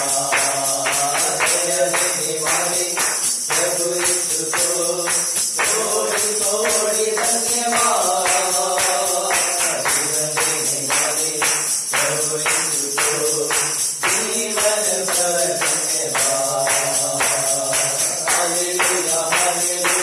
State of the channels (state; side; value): identical; both; correlation 1.00